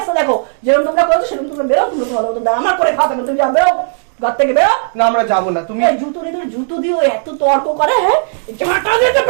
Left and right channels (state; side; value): silent; left; digital silence